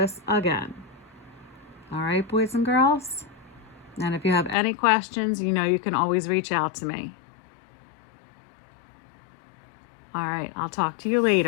again. All right, boys and girls? And if you have any questions, you know you can always reach out to me. All right, I'll talk to you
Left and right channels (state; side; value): drops out; right; at 4.5 s